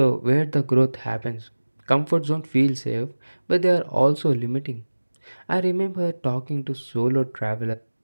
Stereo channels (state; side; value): inverted; both; correlation -1.00